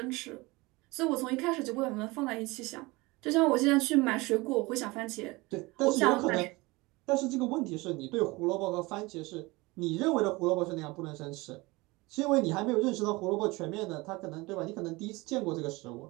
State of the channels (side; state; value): left; quieter; 23.0 dB